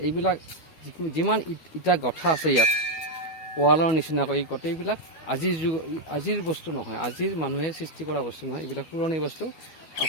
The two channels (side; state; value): right; late; 12 ms